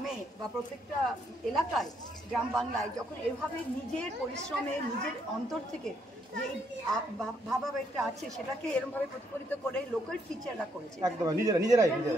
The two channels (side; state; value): both; normal; correlation 0.73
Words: বা প্রত্যেকটা এলাকায়, গ্রাম বাংলায় যখন এভাবে নিজের পরিশ্রমে, নিজের অন্তর থেকে যে ভাবাবেগটা আছে, সেটাকে এরকমভাবে প্রতিফলিত করে লোকাল টিচাররা করেছে। একদম নিজেরাই